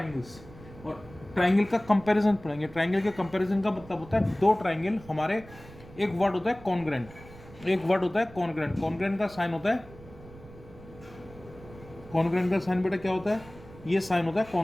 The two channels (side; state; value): right; noise; rumble, 19 dB below the sound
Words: और ट्राइंगल का कंपैरिजन पढ़ेंगे। ट्राइंगल के कंपैरिजन का मतलब होता है दो ट्राइंगल हमारे, एक वर्ड होता है कॉन्ग्रेंट, एक वर्ड होता है कॉन्ग्रेंट। कॉन्ग्रेंट का साइन होता है, कॉन्ग्रेंट का साइन बेटा क्या होता है, ये साइन होता है